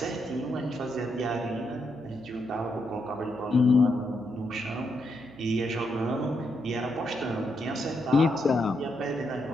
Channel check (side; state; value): right; noise; hum, 22 dB below the sound